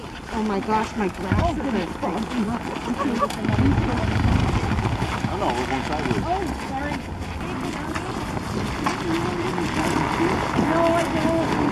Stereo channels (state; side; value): identical; both; correlation 1.00